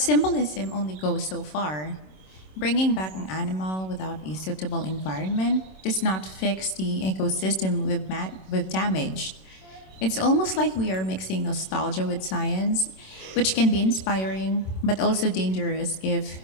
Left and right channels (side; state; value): right; late; 27 ms